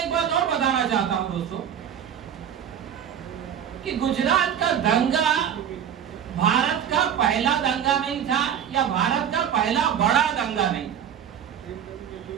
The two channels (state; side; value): quieter; left; 9.0 dB